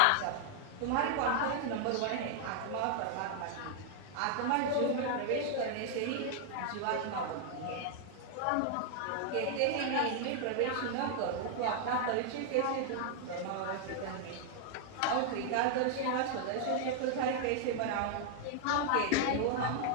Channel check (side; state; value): both; different; correlation 0.00